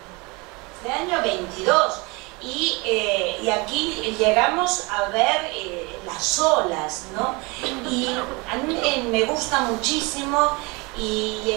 Y aquí llegamos a ver las olas, ¿no? Y a mí me gusta muchísimo, y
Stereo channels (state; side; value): quieter; left; 26.7 dB